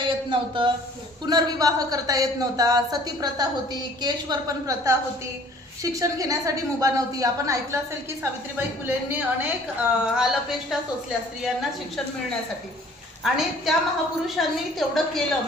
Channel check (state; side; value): normal; both; correlation 0.53